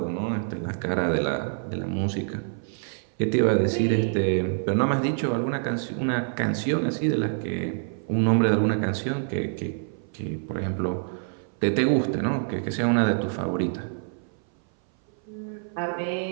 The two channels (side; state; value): left; silent; 58 dB below the other